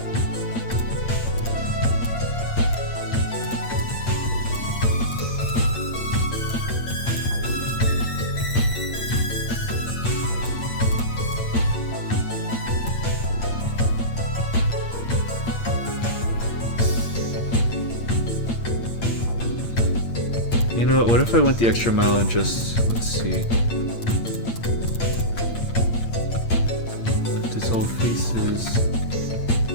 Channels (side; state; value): right; late; 8.7 ms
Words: You know what if I went the extra mile and just, let's see. Dissolve faces.